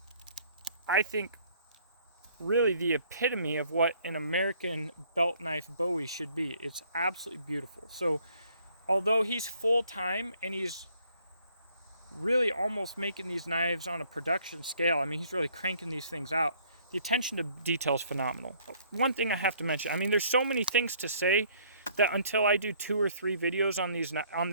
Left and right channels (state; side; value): inverted; both; correlation -0.61